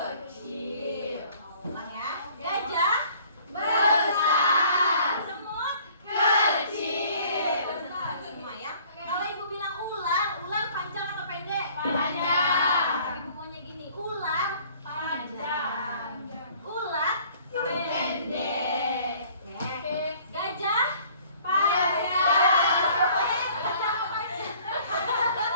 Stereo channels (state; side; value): inverted; both; correlation -0.55